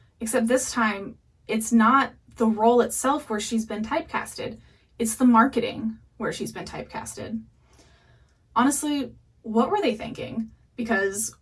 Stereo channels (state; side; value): identical; both; correlation 1.00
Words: except this time it's not the role itself where she's been typecasted, it's the marketing where she's been typecasted. Honestly, what were they thinking? Because